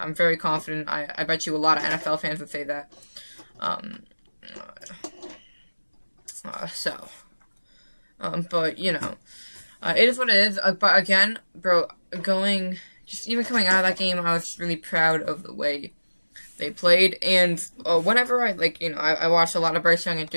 very confident. I bet you a lot of NFL fans would say that. But, you know, it is what it is. But again, bro, even coming out of that game, I was just really proud of the way they played. And whenever I watched a lot of Bryce Young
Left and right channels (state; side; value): inverted; both; correlation -1.00